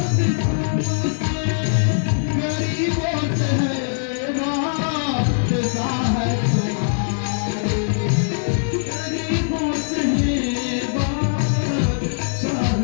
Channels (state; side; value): silent; right; digital silence